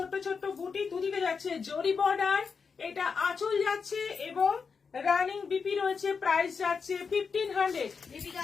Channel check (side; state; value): right; quieter; 5.5 dB